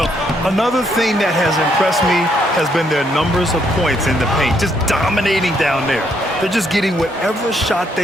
another thing that has impressed me has been their numbers of points in the paint, just dominating down there. They're just getting whatever shot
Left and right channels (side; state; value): both; normal; correlation 0.73